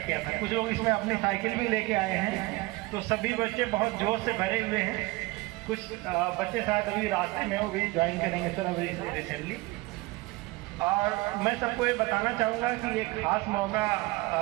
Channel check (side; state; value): left; quieter; 22.3 dB